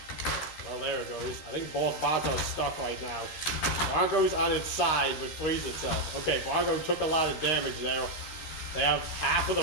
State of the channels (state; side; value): late; right; 13 ms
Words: there it goes. I think both bots are stuck right now. Bronco's on its side, but frees itself. Okay, Bronco took a lot of damage there. They have half of the